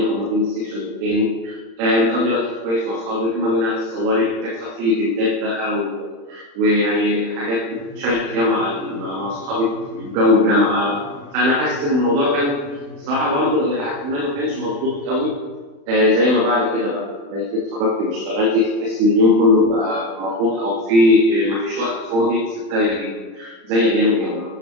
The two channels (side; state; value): left; late; 35 ms